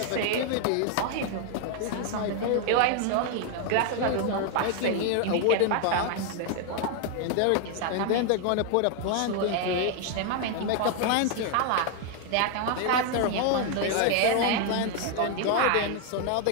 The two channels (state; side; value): different; both; correlation 0.01